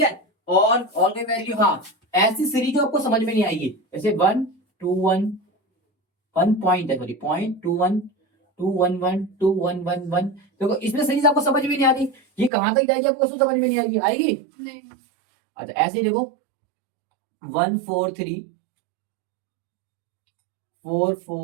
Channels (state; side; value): drops out; left; at 12.5 s